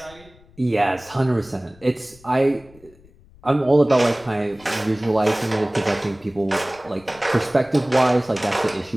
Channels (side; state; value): left; noise; rumble, 26 dB below the sound